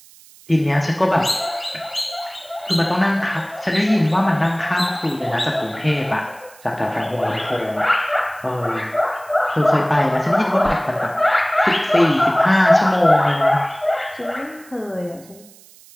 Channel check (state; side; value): noise; right; hiss, 24 dB below the sound